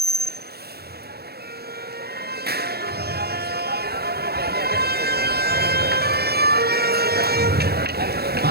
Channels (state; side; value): late; left; 0.46 ms